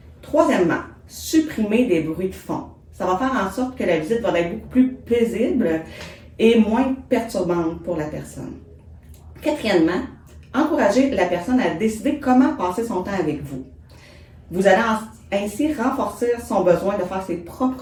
Troisièmement, supprimer des bruits de fond. Ça va faire en sorte que la visite va être beaucoup plus paisible et moins perturbante pour la personne. Quatrièmement, encouragez la personne à décider comment passer son temps avec vous. Vous allez ainsi renforcer son besoin de faire ses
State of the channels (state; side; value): identical; both; correlation 1.00